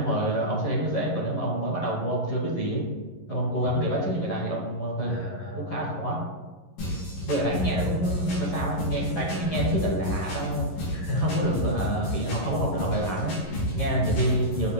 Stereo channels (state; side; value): late; right; 11 ms